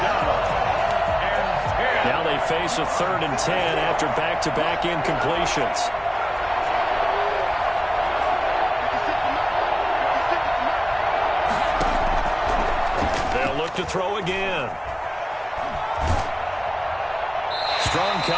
Now they they face a 3rd and 10 after back-to-back incompletions. They'll look to throw again. Strong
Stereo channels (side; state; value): both; identical; correlation 1.00